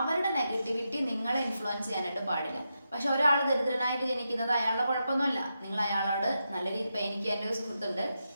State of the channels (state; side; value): inverted; both; correlation -0.86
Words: നെഗറ്റിവിറ്റി നിങ്ങളെ ഇൻഫ്ലുവൻസ് ചെയ്യാനായിട്ട് പാടില്ല. പക്ഷെ ഒരാൾ ദരിദ്രനായിട്ട് ജനിക്കുന്നത് അയാളുടെ കുഴപ്പമൊന്നുമല്ല. നിങ്ങൾ അയാളോട് നല്ല രീതി, ഇപ്പം എനിക്ക് എൻ്റെ ഒരു സുഹൃത്തുണ്ട്,